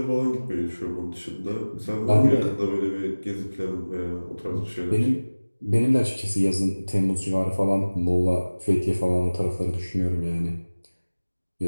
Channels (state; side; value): inverted; both; correlation -1.00